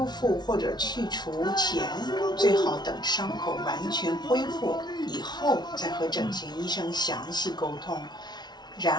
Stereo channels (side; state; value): right; late; 0.20 ms